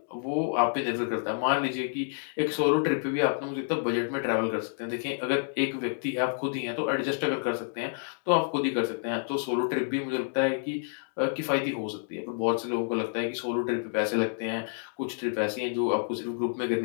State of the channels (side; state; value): right; silent; digital silence